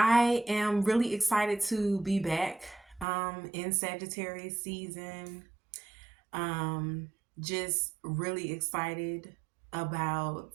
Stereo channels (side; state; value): left; drops out; at 3.1 s